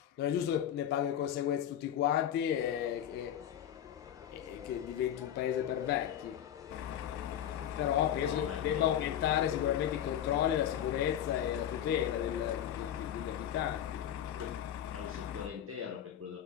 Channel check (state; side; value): quieter; right; 10.3 dB